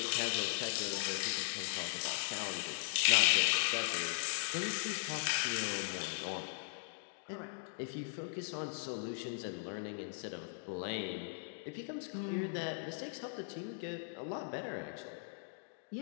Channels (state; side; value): silent; right; digital silence